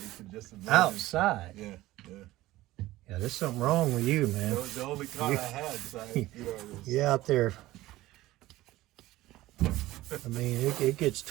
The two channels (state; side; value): quieter; left; 17.0 dB